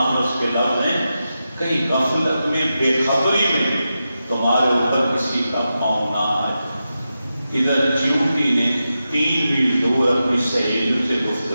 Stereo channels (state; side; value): inverted; both; correlation -0.90